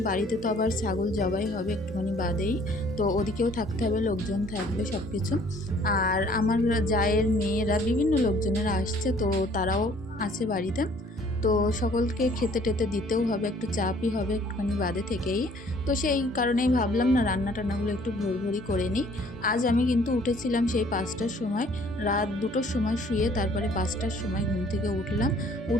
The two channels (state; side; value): normal; both; correlation 0.58